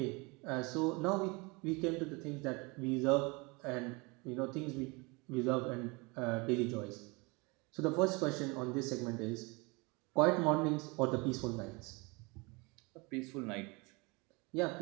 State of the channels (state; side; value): quieter; left; 27.3 dB